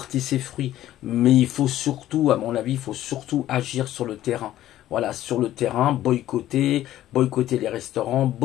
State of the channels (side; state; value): right; quieter; 13.4 dB